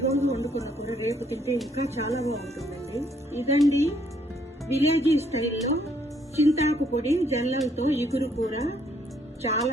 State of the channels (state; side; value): normal; both; correlation 0.68